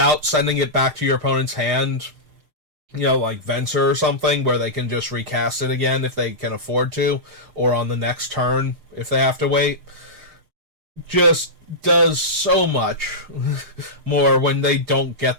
sending it back to your opponent's hand, like Venser or something, where they can just recast it again if they can afford to, or on the next turn if they have to wait, just does so much more when they don't get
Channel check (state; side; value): late; left; 6.5 ms